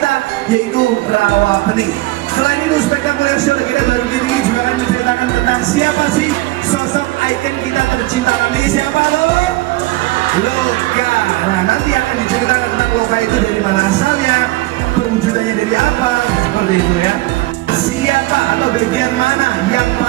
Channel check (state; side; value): quieter; left; 19.0 dB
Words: yaitu Rawa Pening. Selain itu, spektakuler show kita baru ini juga akan menceritakan tentang siapa sih sosok ikon kita tercinta kami, siapa lo? Loka. Nah, nanti akan diceritakan tentang Loka itu dari mana asalnya, perwujudannya dari apa, seperti itu ya. Siapa atau bagian mana yang